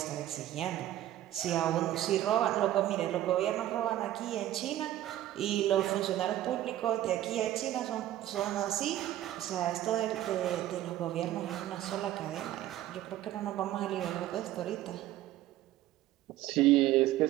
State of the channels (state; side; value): quieter; left; 13.6 dB